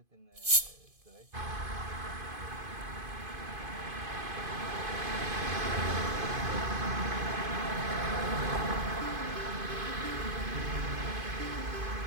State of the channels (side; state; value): left; late; 2.5 ms